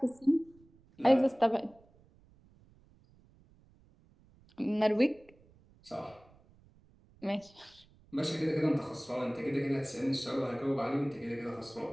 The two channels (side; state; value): right; noise; rumble, 28 dB below the sound